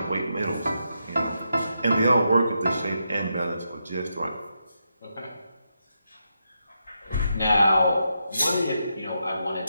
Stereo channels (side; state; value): both; inverted; correlation -0.84